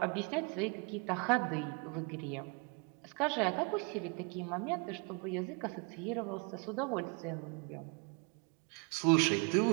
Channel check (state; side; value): quieter; left; 33.0 dB